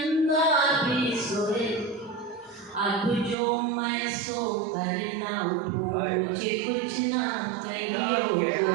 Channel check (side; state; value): left; drops out; at 3.4 s